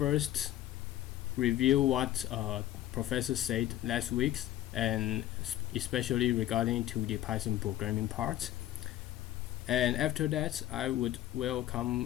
review what professor said last week, and especially regarding to the Python programming part. And after that, I would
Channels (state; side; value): quieter; right; 13.5 dB